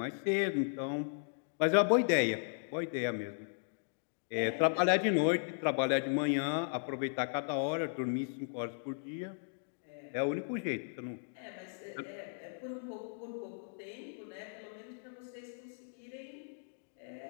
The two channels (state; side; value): silent; right; digital silence